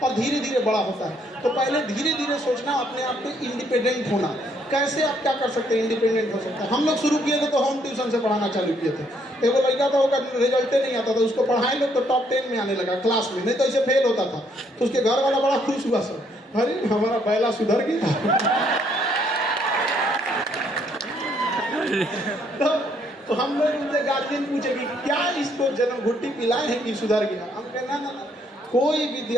धीरे धीरे बड़ा होता है। तो पहले धीरे धीरे सोचना, अपने आप को इंडिपेंडेंट होना। कैसे आप क्या कर सकते हैं, इंडिपेंडेंट हो सकता है। हम लोग शुरू किए थे तो होम ट्यूशन से पढ़ाना चालू किए थे। एक लड़का था, उसका रिजल्ट नहीं आता था, उसको पढ़ाए लोग तो टॉप 10 में आने लगा क्लास में, नहीं तो ऐसे फेल होता था। तो उसके घर वाला बड़ा खुश हुआ, सर अरे हमारा बैला सुधर गया। तो हम लोग उनसे गार्जियन पूछे कि क्या इसको जन्म घुट्टी पिलाए हैं कि सुधर गया। हम कहना ना, कोई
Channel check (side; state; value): both; normal; correlation 0.69